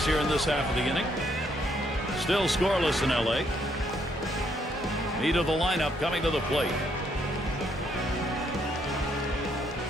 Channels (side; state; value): both; normal; correlation 0.72